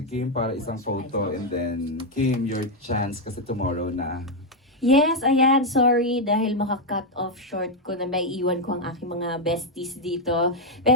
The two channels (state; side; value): normal; both; correlation 0.02